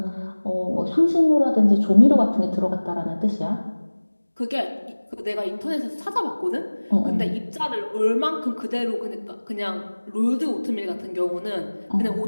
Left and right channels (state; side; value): inverted; both; correlation -1.00